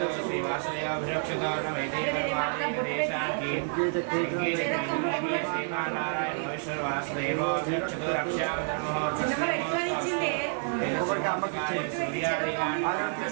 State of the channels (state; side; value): silent; left; 59 dB below the other